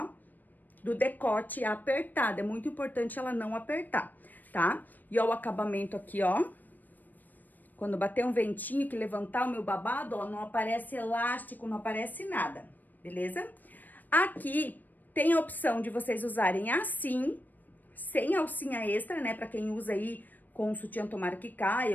do decote apertada. É muito importante ela não apertar, tá? E ó, o acabamento aqui, ó. Quando bater um ventinho que levantar o meu babado, ó, não aparece elástico, não aparece nada, beleza? Aqui tem a opção de vocês usarem assim, sem alcinha extra, né? Pra quem usa aí com sutiã tomara que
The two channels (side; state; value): right; late; 0.087 ms